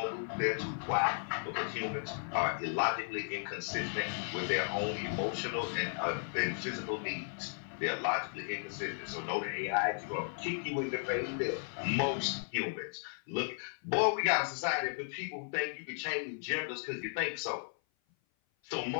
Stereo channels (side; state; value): right; silent; 54 dB below the other